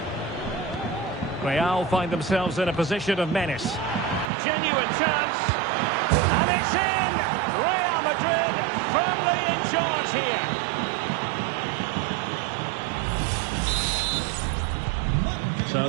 Real find themselves in a position of menace. Genuine chance. And it's in! Real Madrid firmly in charge here. So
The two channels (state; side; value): drops out; left; at 4.3 s